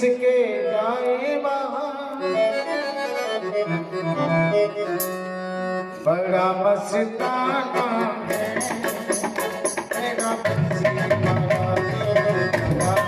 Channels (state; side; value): identical; both; correlation 1.00